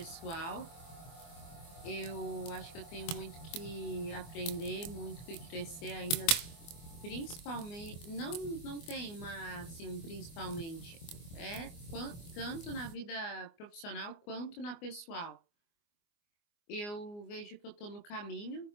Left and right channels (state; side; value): late; right; 24 ms